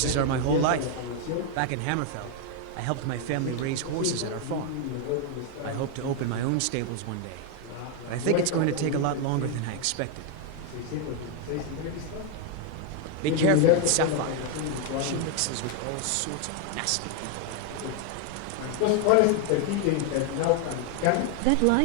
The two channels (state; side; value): different; both; correlation 0.00